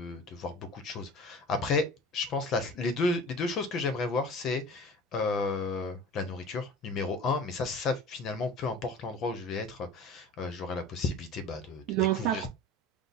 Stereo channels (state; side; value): normal; both; correlation 0.39